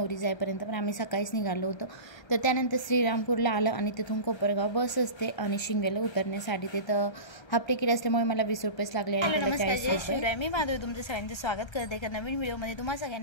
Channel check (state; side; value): late; right; 1.3 ms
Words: जाईपर्यंत, पण आम्ही सकाळीच निघालो होतो। तर त्यानंतर श्रीरामपूरला आलं आणि तिथून कोपरगाव बस असते आणि शिंगव्याला उतरण्यासाठी तिथं हाफ तिकीट असल्यामुळे मला 20 रुपयेच लागले आणि त्याला 40 रुपये। मी माधवी तुमचं सगळ्यांचं स्वागत करते एका नवीन व्हिडिओमध्ये। तुम्हा